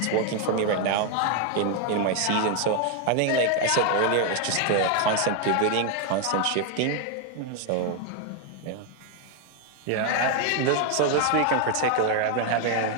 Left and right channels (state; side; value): different; both; correlation 0.01